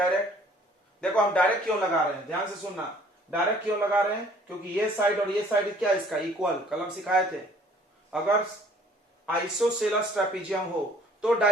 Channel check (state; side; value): normal; both; correlation 0.56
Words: देखो हम डायरेक्ट क्यों लगा रहे हैं, ध्यान से सुनना। डायरेक्ट क्यों लगा रहे हैं? क्योंकि ये साइड और ये साइड क्या इसका इक्वल, कलम सिखाए थे। अगर आइसोसेलेस ट्रेपीजियम हो तो